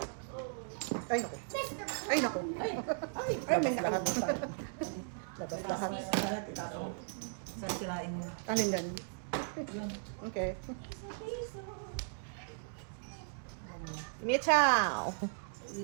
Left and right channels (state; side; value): silent; left; digital silence